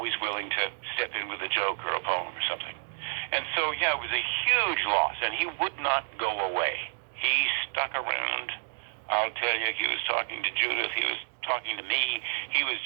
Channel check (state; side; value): silent; left; digital silence